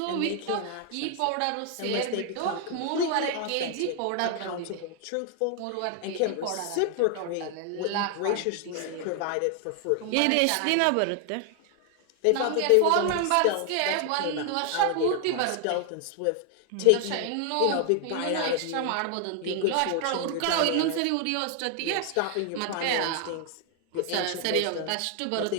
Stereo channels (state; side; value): different; both; correlation 0.00